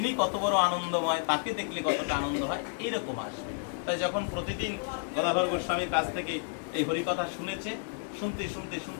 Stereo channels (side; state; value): right; silent; 57 dB below the other